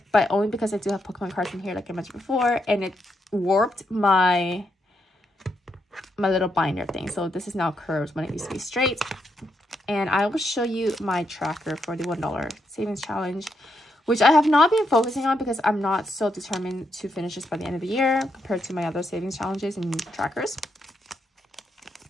but only because I do have Pokemon cards in here, like I mentioned before, and it warped my little binder thing. So this is now curved when it used to be straight. And I will show you my tracker for the $1 savings challenge, which I have not been focusing on because I'm not so determined to finish this by the end of the year compared to my other savings challenges and trackers.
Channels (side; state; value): both; normal; correlation 0.80